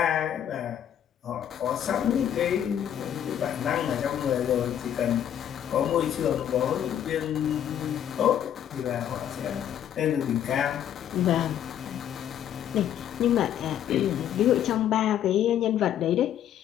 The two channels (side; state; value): right; quieter; 10.2 dB